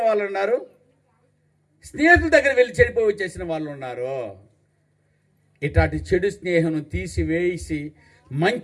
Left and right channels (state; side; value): identical; both; correlation 1.00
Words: వాళ్ళు ఉన్నారు, స్నేహితుల దగ్గర వెళ్ళి చెడిపోయి వచ్చేసిన వాళ్ళు ఉన్నారు. ఇట్లాంటి చెడు స్నేహం తీసివేసి